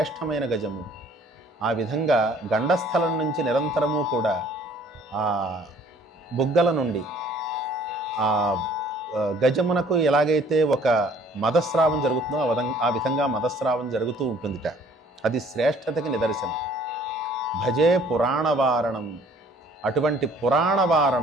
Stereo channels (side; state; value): both; normal; correlation 0.56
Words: గజము. ఆ విధంగా గండస్థలం నుంచి నిరంతరము కూడా ఆ బుగ్గల నుండి ఆ గజమునకు ఎలాగైతే ఒక మదస్రావం జరుగుతుందో ఆ విధంగా మదస్రావం జరుగుతూ ఉంటుందిట. అది శ్రేష్టతకి నిదర్శనం. భజే పురాణవారణం. అటువంటి